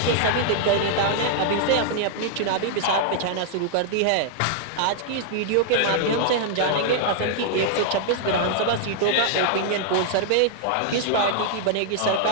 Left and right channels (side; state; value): both; different; correlation -0.01